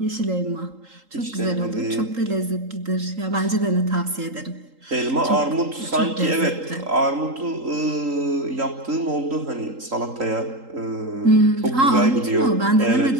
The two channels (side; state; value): left; late; 3.8 ms